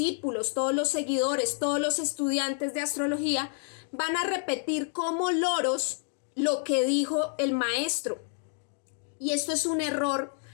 todos los seguidores, todos los estudiantes de astrología, van a repetir como loros lo que dijo el maestro. Y esto es un error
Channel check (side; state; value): right; silent; 59 dB below the other